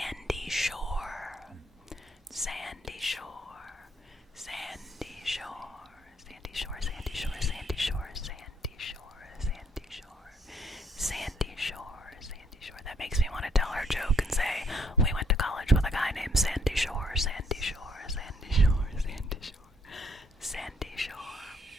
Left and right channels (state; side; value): normal; both; correlation 0.69